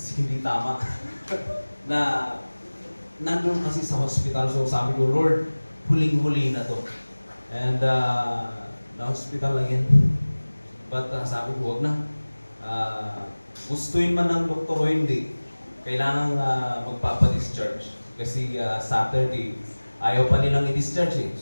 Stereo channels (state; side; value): inverted; both; correlation -1.00